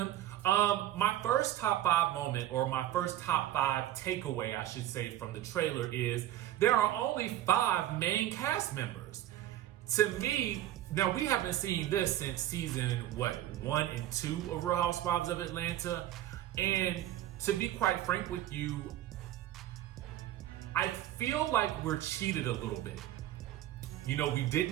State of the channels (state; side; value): quieter; left; 13.1 dB